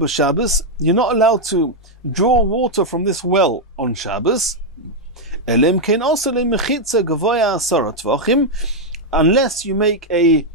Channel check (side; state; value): both; normal; correlation -0.01